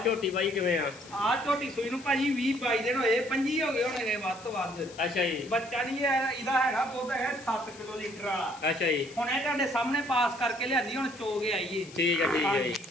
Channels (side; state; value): left; noise; hiss, 19 dB below the sound